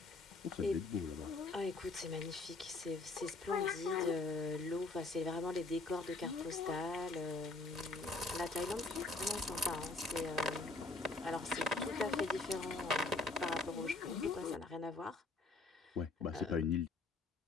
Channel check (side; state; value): right; quieter; 3.4 dB